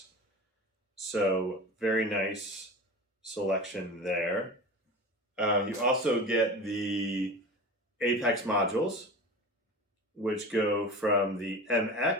So very nice selection there. You also get the Apex modules, which go from the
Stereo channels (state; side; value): normal; both; correlation 0.32